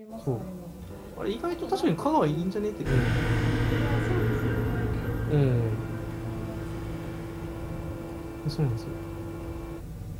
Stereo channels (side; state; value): both; identical; correlation 1.00